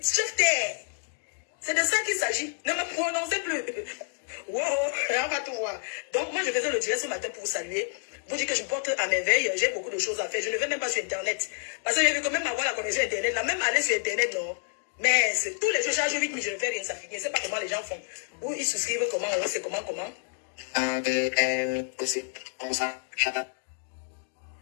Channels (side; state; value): right; silent; digital silence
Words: C'est de ça qu'il s'agit. Ne me prononcez plus. Wow, on va tout voir. Donc moi je faisais le direct ce matin pour vous saluer. Vous dire que je me porte à merveille. J'ai beaucoup de choses à faire. Je ne vais même pas sur Internet. Parce que j'ai vu quand même avoir la connexion Internet. Là, même aller sur Internet, non. Mais tous les jours, je charge 8 000, je ne fais rien. Ça finit. Je ne sais pas comment les gens font. Ou ils souscrivent comment, ou c'est comment. Quand